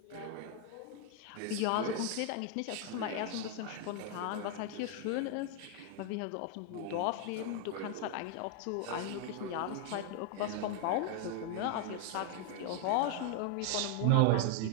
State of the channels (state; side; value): different; both; correlation 0.00